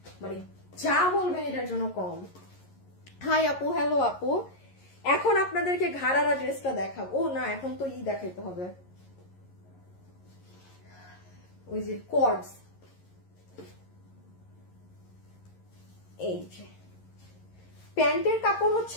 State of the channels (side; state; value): right; late; 11 ms